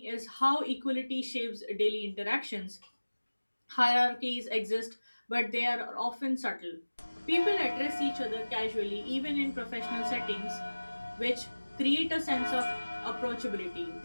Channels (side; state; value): both; inverted; correlation -1.00